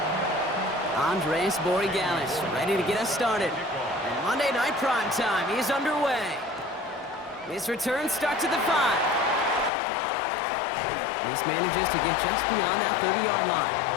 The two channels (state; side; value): drops out; right; at 9.7 s